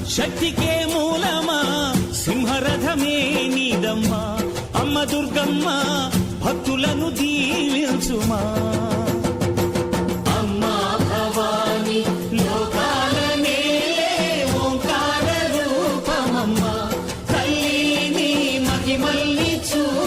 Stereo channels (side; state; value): both; identical; correlation 1.00